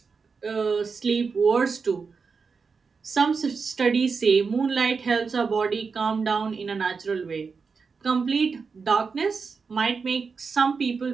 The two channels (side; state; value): left; quieter; 5.1 dB